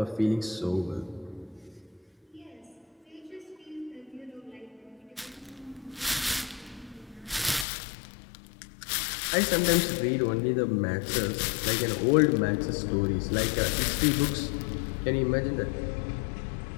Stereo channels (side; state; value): right; drops out; at 7.7 s